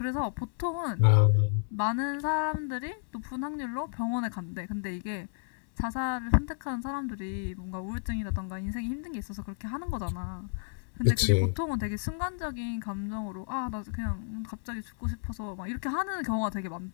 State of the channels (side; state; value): right; silent; digital silence